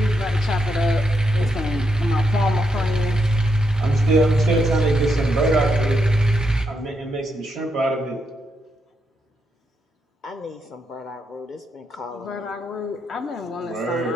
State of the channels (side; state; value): both; normal; correlation 0.81